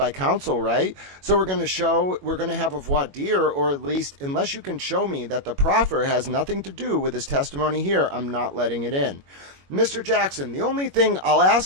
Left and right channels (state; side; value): late; left; 21 ms